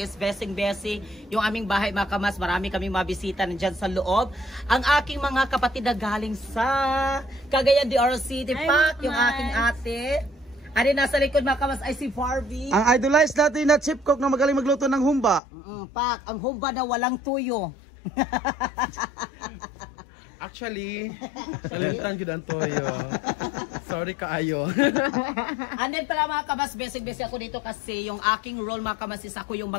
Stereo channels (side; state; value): right; drops out; at 15.4 s